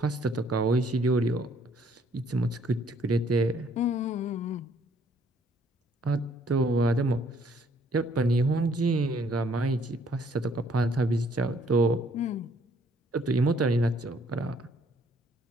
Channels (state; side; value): normal; both; correlation 0.63